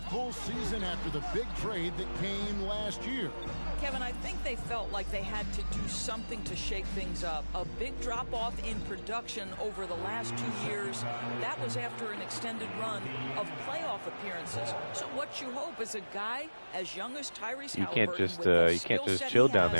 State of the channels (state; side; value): inverted; both; correlation -1.00